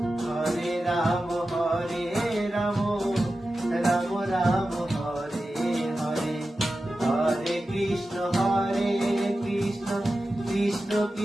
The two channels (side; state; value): both; normal; correlation 0.93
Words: হরে রাম রাম রাম হরে হরে। হরে কৃষ্ণ কৃষ্ণ